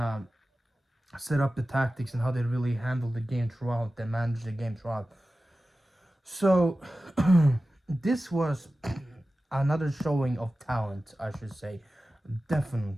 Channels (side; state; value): both; normal; correlation 0.95